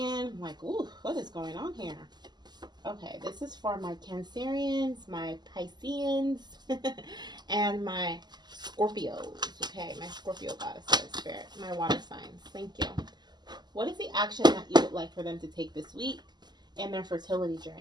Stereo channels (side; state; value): left; late; 0.21 ms